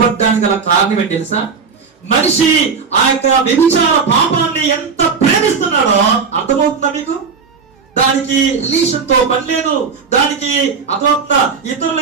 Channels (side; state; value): left; quieter; 5.5 dB